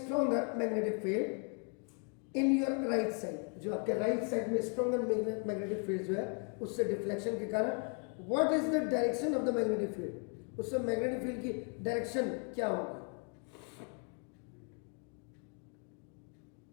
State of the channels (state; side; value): quieter; right; 39.2 dB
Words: magnetic field in your right side. जो आपके राइट साइड में स्ट्रॉन्गर मैग्नेटिक फील्ड जो है उससे डिफ्लेक्शन के कारण what is the direction of the magnetic field, उससे मैग्नेटिक फील्ड की डायरेक्शन क्या होगी.